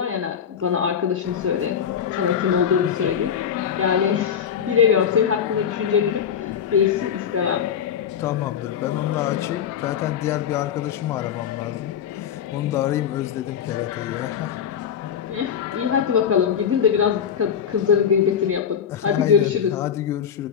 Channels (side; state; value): right; quieter; 8.1 dB